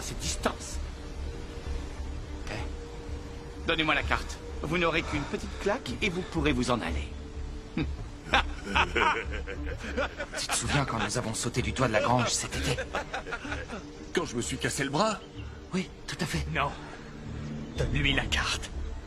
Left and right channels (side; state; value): both; identical; correlation 1.00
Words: cette distance. Eh, donnez-moi la carte. Vous n'aurez qu'une petite claque et vous pourrez vous en aller. Tu te souviens quand nous avons sauté du toit de la grange cet été? Quand je me suis cassé le bras? Oui, tout à fait. Non. Donne-lui la carte.